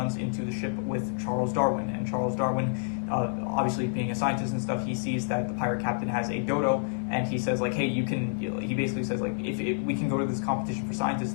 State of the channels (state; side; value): silent; right; 59 dB below the other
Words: into the ship with Charles Darwin, and Charles Darwin, obviously being a scientist and stuff, he sees that the pirate captain has a dodo, and he says like, hey, you can, he basically says like, if we can go to this competition for scientists,